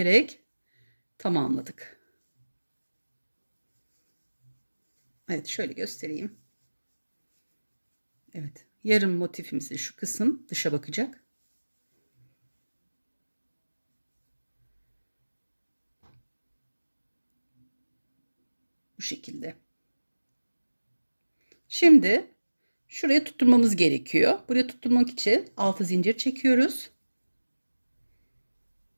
tamamladık. Evet, şöyle göstereyim. Evet, yarım motifimizi şu kısım dışa bakacak. Bu şekilde. Şimdi şuraya tutturmamız gerekiyor. Buraya tutturmak için 6 zincir çekiyoruz.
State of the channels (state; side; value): inverted; both; correlation -1.00